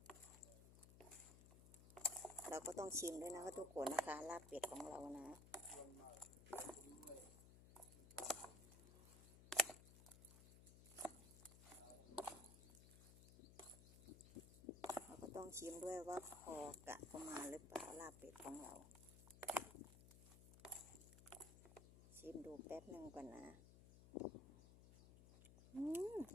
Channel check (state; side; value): noise; left; hum, 16 dB below the sound